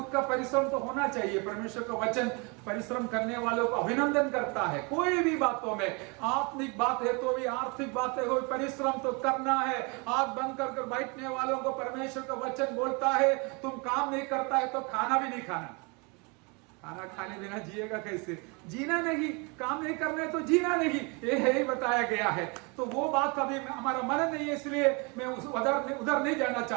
का परिश्रम तो होना चाहिए। परमेश्वर का वचन परिश्रम करने वालों को अभिनंदन करता है। कोई भी बातों में, आत्मिक बात है तो भी, आर्थिक बातें हो, परिश्रम तो करना है। आंख बंद कर बैठने वालों को परमेश्वर का वचन बोलता है, तुम काम नहीं करता है तो खाना भी नहीं खाना। खाना खाने बिना जिएगा कैसे? जीना नहीं, काम नहीं करना है तो जीना नहीं, ये है ही बताया गया है। तो वो बात अभी हमारा मन नहीं है, इसलिए मैं उधर नहीं जाना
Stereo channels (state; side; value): quieter; left; 30.8 dB